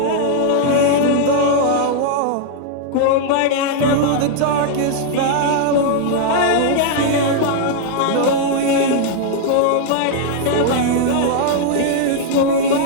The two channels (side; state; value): both; different; correlation -0.01